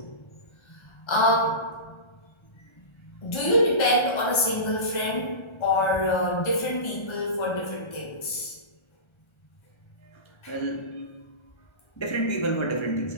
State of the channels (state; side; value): late; right; 1.3 ms